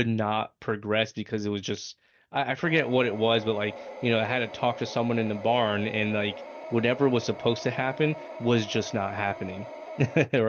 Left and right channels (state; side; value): identical; both; correlation 1.00